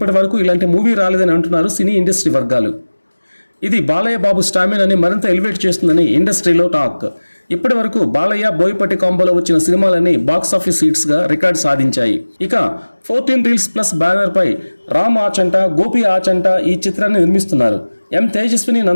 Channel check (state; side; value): inverted; both; correlation -1.00